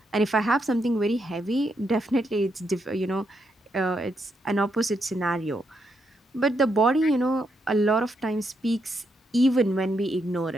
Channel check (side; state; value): both; normal; correlation 0.79